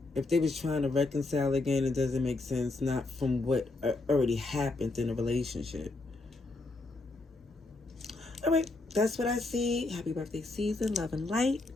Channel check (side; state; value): right; quieter; 3.2 dB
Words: if they was trying to reconcile again, it doesn't make sense, not from what already happened in a relationship. All right, that's what I see. Happy birthday season. Love and light.